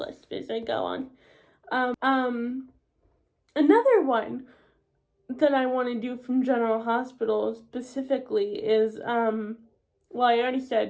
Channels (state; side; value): identical; both; correlation 1.00